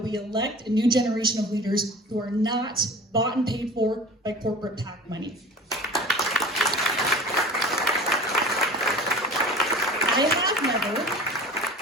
we elect a new generation of leaders who are not bought and paid for by corporate PAC money.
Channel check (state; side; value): normal; both; correlation 0.39